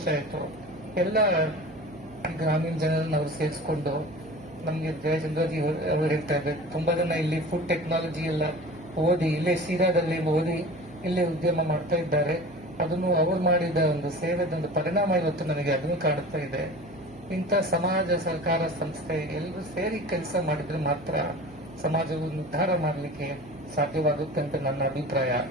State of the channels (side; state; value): right; noise; hum, 20 dB below the sound